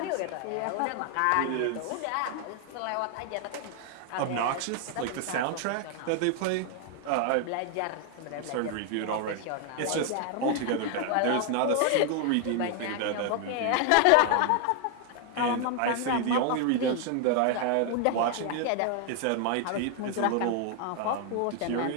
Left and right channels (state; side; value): different; both; correlation 0.00